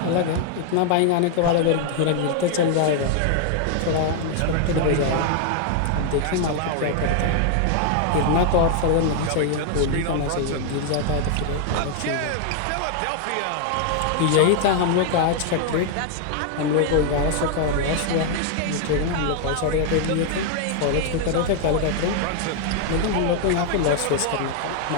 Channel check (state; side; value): different; both; correlation 0.00